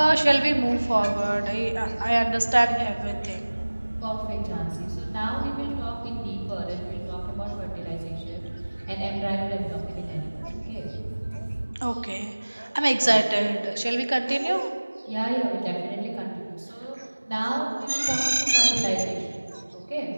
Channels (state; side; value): inverted; both; correlation -1.00